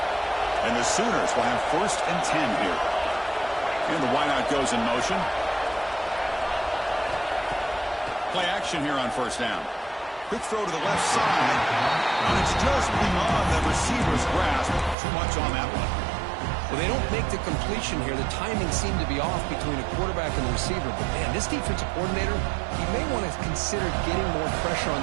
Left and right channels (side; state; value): left; drops out; at 15.0 s